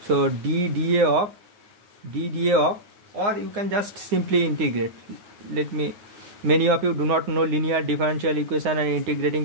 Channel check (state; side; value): late; left; 9.7 ms